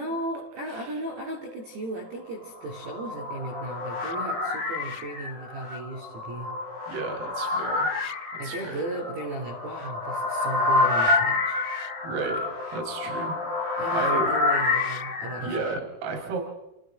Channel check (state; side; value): late; left; 18 ms